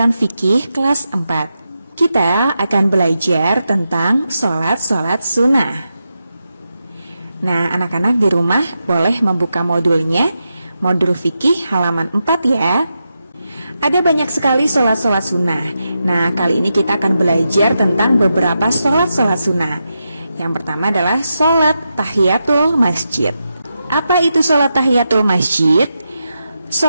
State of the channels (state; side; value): inverted; both; correlation -0.87